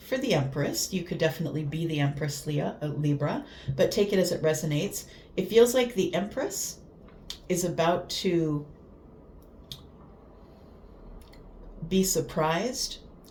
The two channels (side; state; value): both; identical; correlation 1.00